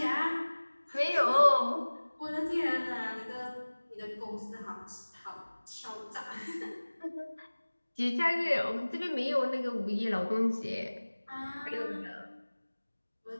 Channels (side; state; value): both; inverted; correlation -1.00